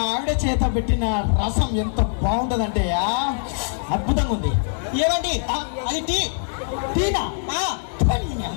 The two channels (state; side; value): silent; right; digital silence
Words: ఆవిడ చేత పెట్టిన రసం ఎంత బాగుంటదంటే అద్భుతంగా ఉంది. ఏమండి అది టీనా